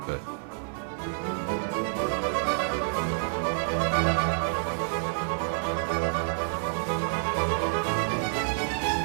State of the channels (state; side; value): silent; left; digital silence